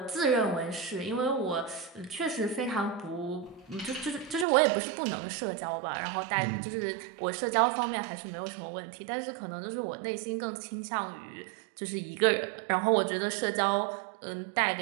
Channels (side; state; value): left; drops out; at 4.5 s